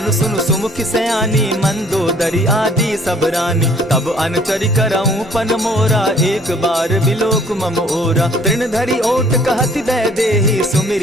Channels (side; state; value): both; normal; correlation 0.57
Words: सुन सुमुख सयानी, मंदोदरी आदि सब रानी। तब अनुचरि करऊं पन मोरा, एक बार बिलोक मम ओरा। तृण धरि ओट कहति दय देहि,